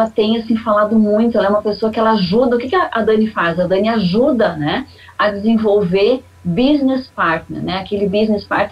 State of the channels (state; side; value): identical; both; correlation 1.00